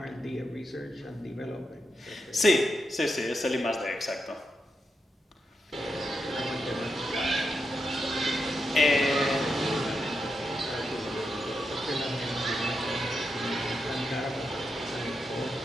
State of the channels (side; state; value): both; normal; correlation 0.86